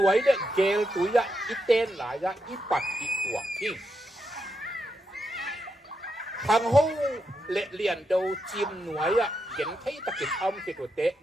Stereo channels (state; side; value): normal; both; correlation 0.84